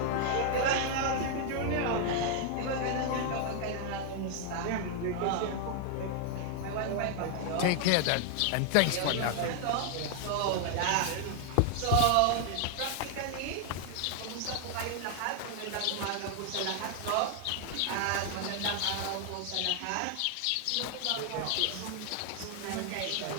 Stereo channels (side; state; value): both; different; correlation 0.00